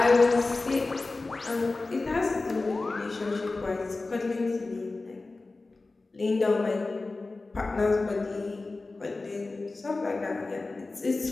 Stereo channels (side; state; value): right; quieter; 3.4 dB